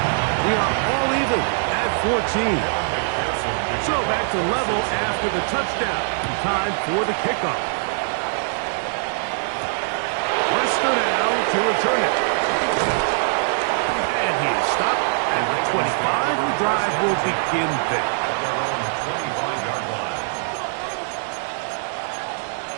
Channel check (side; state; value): left; silent; digital silence